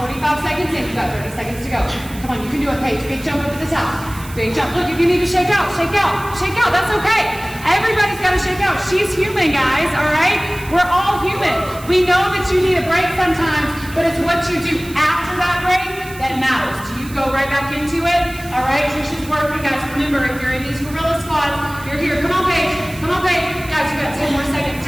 we're 45 seconds in. You got 30 seconds to go. Come on, you can do it, Paige. Big jump up at the top. Big jump. Look, if you need to shake out, shake out, shake out. That's okay. Everybody's got to shake out. She's human, guys, all right? We're all human. We know that you need a break sometimes, but it's what you do after that break that matters. Do you go right back into it? All right, Trisha's working, guys. Remember, if you're in these gorilla squats, you're here. Come on, Paige. Come on, Paige. Guys, you got 10 more seconds.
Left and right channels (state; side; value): noise; right; hiss, 17 dB below the sound